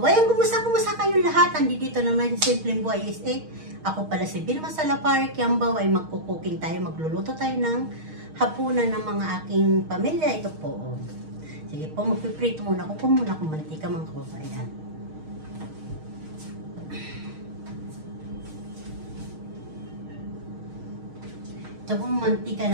kumusta kayo lahat? Andito naman sa Simpleng Buhay USA. Ako pala si Vilma Salapari Kiambaw ay magkukuking tayo, magluluto tayo ng hapunan ng mga aking pamilya. Ito po. Sige po, magpiprito muna ako. Muna akong mantika mga kababayan. Ito po mantika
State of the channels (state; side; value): late; left; 6.4 ms